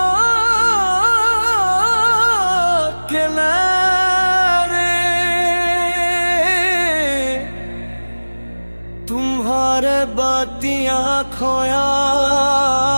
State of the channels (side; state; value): both; inverted; correlation -1.00